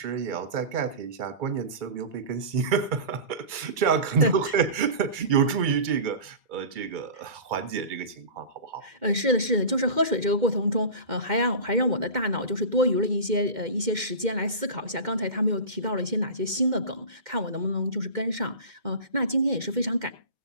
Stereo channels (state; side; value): late; left; 2.1 ms